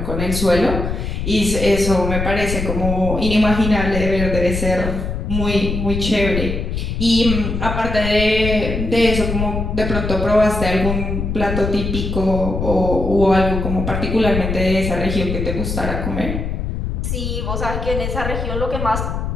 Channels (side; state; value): left; noise; rumble, 3 dB below the sound